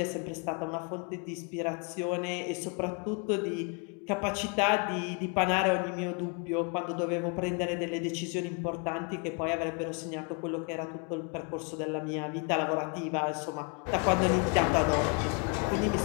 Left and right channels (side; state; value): right; quieter; 35.3 dB